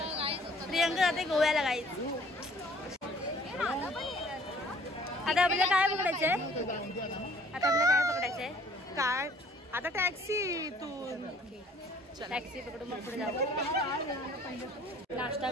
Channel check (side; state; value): both; normal; correlation 0.56